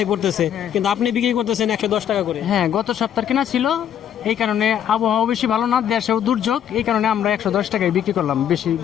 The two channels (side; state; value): right; quieter; 9.7 dB